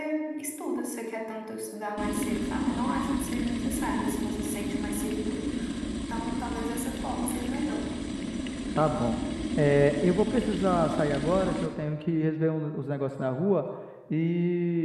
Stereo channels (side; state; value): both; identical; correlation 1.00